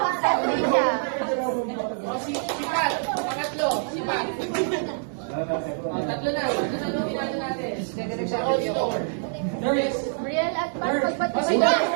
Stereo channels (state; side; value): silent; left; 59 dB below the other